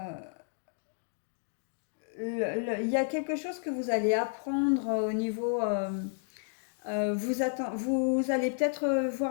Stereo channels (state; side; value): silent; right; digital silence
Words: Il y a quelque chose que vous allez apprendre au niveau. Vous allez peut-être